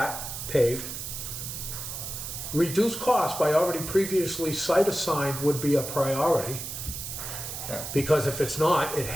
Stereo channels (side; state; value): right; noise; hiss, 7 dB below the sound